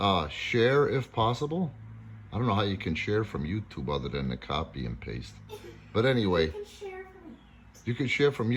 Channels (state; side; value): identical; both; correlation 1.00